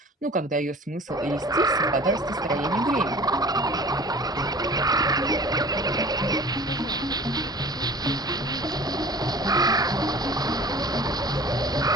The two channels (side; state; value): both; normal; correlation 0.44